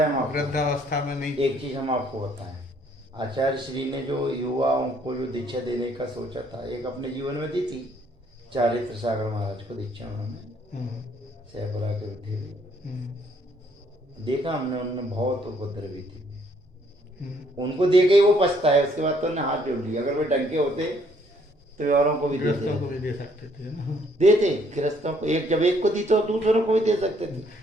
हम आपको, वृद्धावस्था में नहीं। एक चीज हम आपको बताएं, आचार्य श्री ने जो युवाओं को जो दीक्षा देने का सोचा था, एक अपने जीवन में दी थी, चारित्र सागर महाराज को दीक्षा उन्होंने सहपुरा के थे। देखा हमने, उन्होंने बहुत उपद्रवी थी, उनको दे के ही वो पछता है। उसके बाद तो उन्होंने हाथ जोड़ लिया, अगर वे डंके होते तो औरों को भी गृहस्थों को भी दे सकते थे ना, देते गृहस्थों को, एक जब एक को दी तो दूसरों को भी दे सकते थे।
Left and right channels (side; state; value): both; normal; correlation 0.66